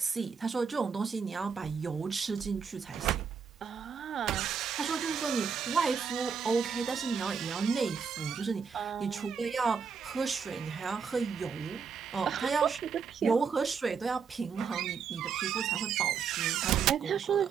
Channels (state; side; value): quieter; left; 6.1 dB